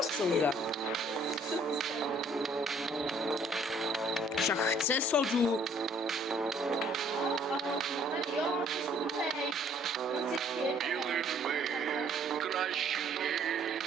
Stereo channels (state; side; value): normal; both; correlation 0.60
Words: souda. Však chce sodu. Краще